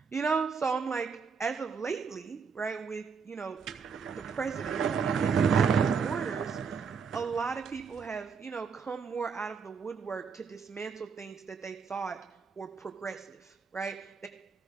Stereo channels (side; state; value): left; quieter; 5.9 dB